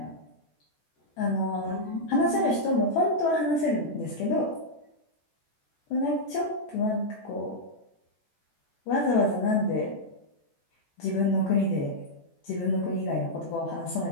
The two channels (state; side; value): late; right; 14 ms